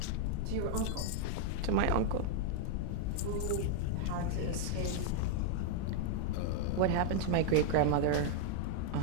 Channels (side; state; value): both; different; correlation 0.00